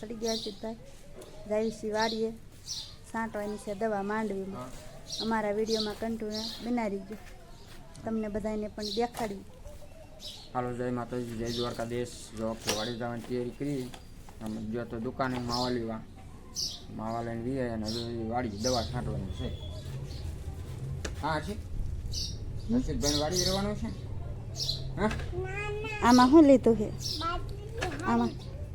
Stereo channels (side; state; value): both; identical; correlation 1.00